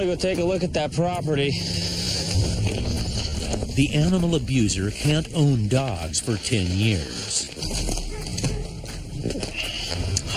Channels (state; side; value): identical; both; correlation 1.00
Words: go take a look at that property. The animal abuser can't own dogs for 10 years.